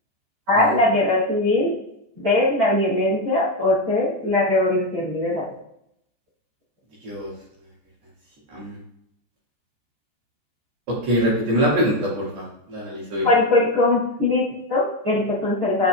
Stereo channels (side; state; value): left; late; 14 ms